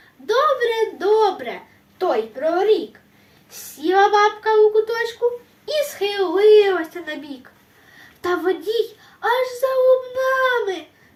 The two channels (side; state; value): both; identical; correlation 1.00